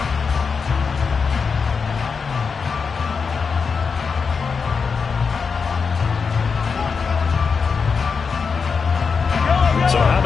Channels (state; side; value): quieter; right; 5.4 dB